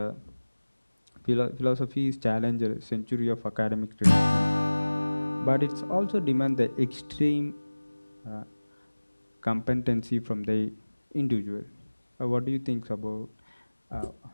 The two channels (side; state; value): both; inverted; correlation -1.00